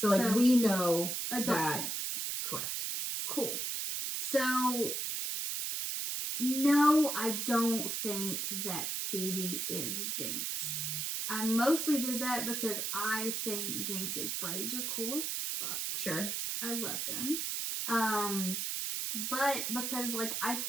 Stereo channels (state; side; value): noise; right; hiss, 1 dB below the sound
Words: we know adult that. Jinx. Correct. Cool. So no, I don't think that Phoebe is Jinx. I mostly did that because I think Jinx's braids are cool as fuck. Sure. I love them. But because like I